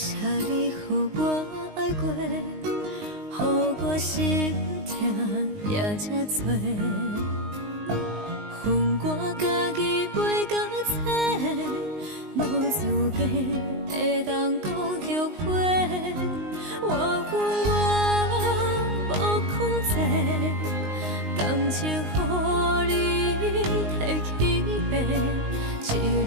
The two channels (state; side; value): late; left; 19 ms